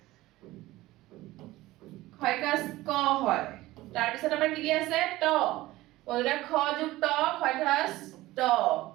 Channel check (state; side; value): quieter; left; 17.7 dB